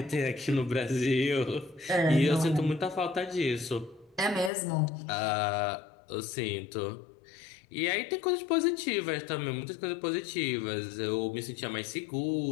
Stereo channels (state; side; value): drops out; right; at 4.5 s